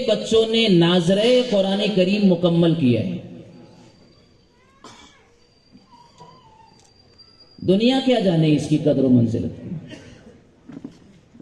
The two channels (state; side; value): identical; both; correlation 1.00